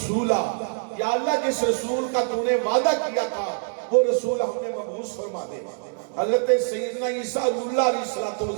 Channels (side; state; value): left; silent; digital silence